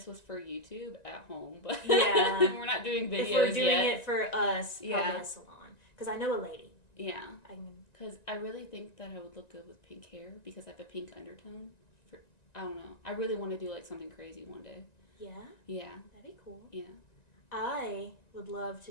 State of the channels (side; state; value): right; late; 1.9 ms